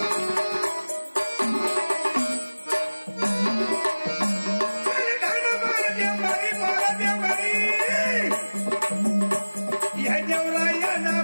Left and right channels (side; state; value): both; inverted; correlation -1.00